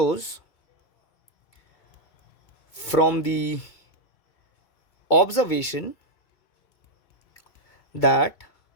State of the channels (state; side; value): late; right; 2.2 ms